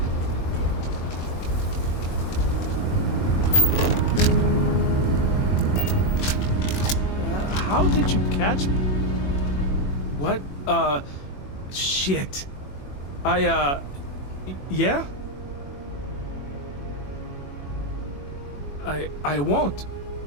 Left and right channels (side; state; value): right; late; 21 ms